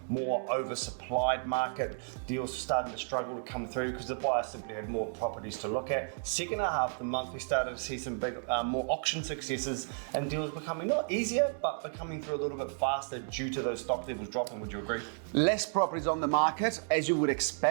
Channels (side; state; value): left; silent; 56 dB below the other